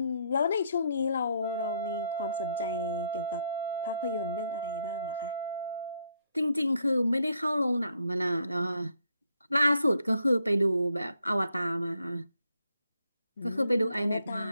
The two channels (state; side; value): inverted; both; correlation -0.74